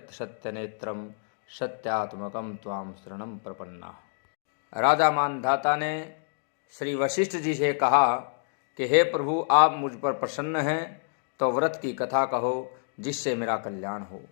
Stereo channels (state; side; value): silent; right; digital silence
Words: सत्यनेत्रम सत्यात्मकम त्वाम शरणम प्रपन्ना। राजा मानधाता ने श्री वशिष्ठ जी से कहा कि हे प्रभु, आप मुझ पर प्रसन्न हैं तो व्रत की कथा कहो जिससे मेरा कल्याण हो।